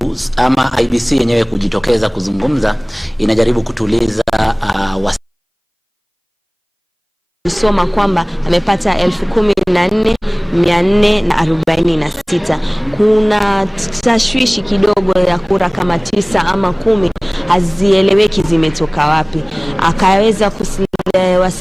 ama IEBC yenyewe kujitokeza kuzungumza, inajaribu kutuliza kusoma kwamba amepata 14,446. Kuna tashwishi kidogo ya kura kama 9 ama 10 hazieleweki zimetoka wapi. Akaweza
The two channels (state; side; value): identical; both; correlation 1.00